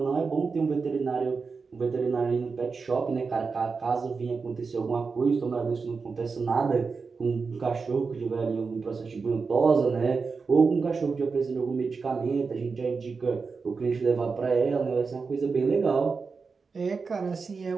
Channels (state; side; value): quieter; left; 4.8 dB